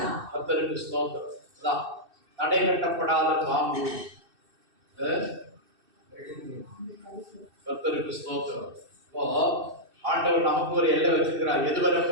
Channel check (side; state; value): left; late; 2.6 ms